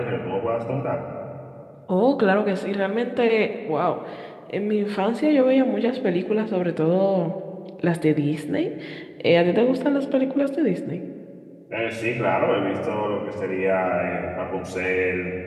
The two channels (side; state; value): both; identical; correlation 1.00